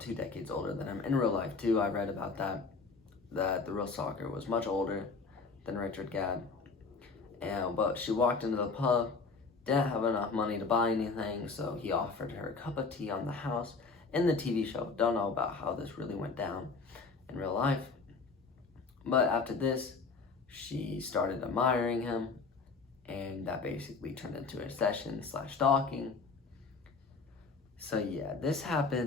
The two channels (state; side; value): quieter; right; 4.4 dB